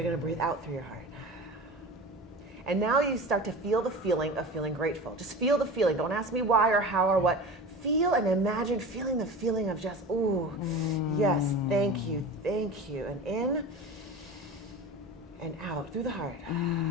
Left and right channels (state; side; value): normal; both; correlation 0.32